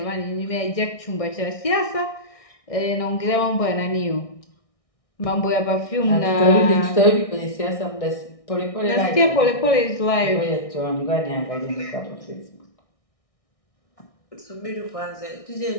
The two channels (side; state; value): right; late; 1.6 ms